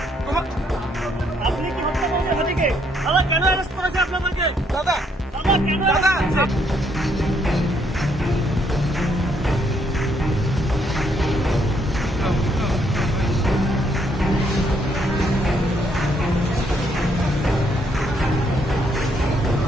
তোমার আপনি কি হত্যা করেছেন হাতিকে? দাদা কেন অ্যারেস্ট করেছে আপনাদেরকে? দাদা দাদা কেন দাদা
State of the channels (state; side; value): normal; both; correlation 0.71